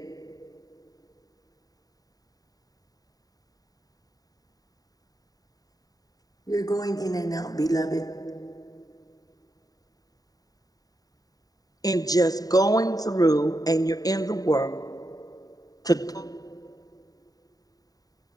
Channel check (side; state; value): right; late; 0.18 ms